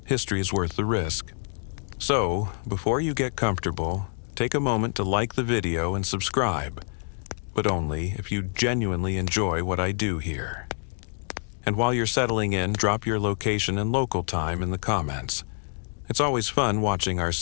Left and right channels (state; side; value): silent; right; 60 dB below the other